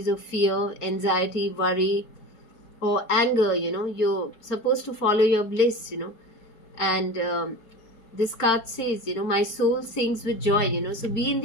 of fear, anxiety, worry, or anger, you're supposed to follow your bliss, and this card says, my soul sings with joy, so be in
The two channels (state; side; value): late; right; 4.6 ms